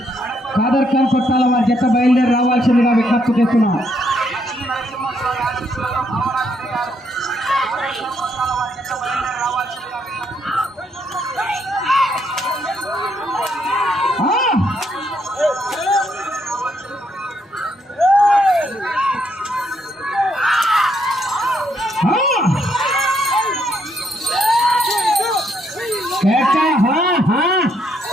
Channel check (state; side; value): normal; both; correlation 0.74